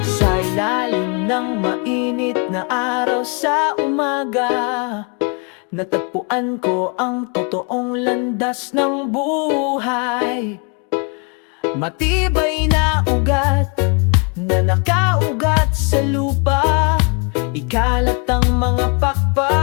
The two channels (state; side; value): quieter; right; 34.7 dB